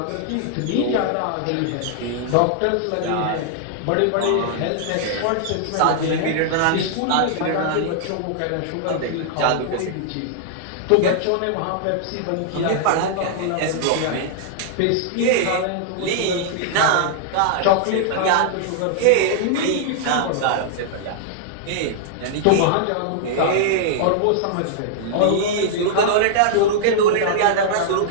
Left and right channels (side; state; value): both; different; correlation -0.01